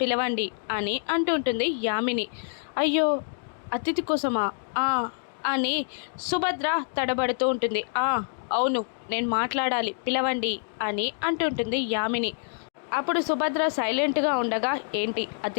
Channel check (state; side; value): silent; right; digital silence